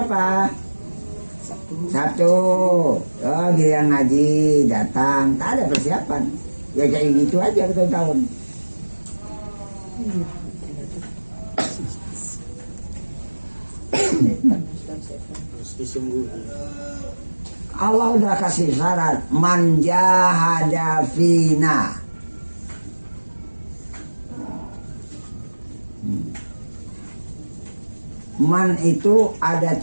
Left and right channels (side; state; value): both; inverted; correlation -1.00